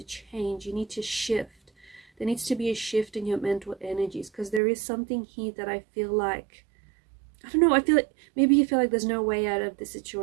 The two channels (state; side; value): drops out; left; at 4.6 s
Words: change. You need to shift. There needs to be a shift in your mental energies, because there is something here that I feel like, I don't know, I feel like maybe you feel like there's no way out of this